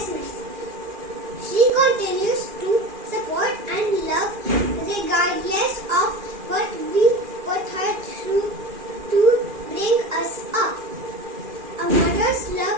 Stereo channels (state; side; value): late; left; 2.4 ms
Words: She continues to support and love regardless of what we put her through to bring us up. A mother's